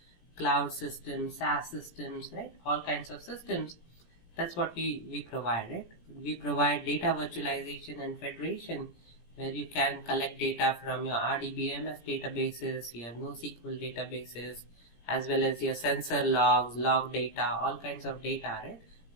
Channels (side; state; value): right; late; 17 ms